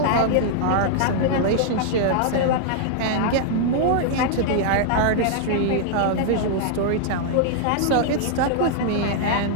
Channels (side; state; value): both; different; correlation -0.01